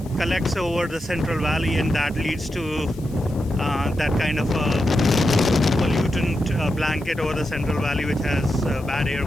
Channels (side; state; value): left; noise; hiss, 24 dB below the sound